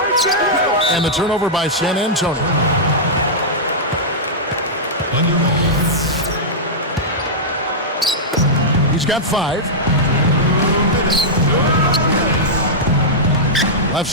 And the turnover by San Antonio. He's got 5. Left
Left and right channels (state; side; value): normal; both; correlation -0.10